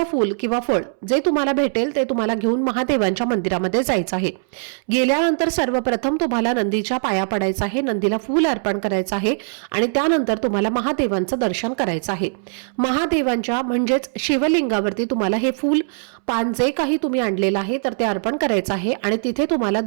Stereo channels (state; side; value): silent; left; 65 dB below the other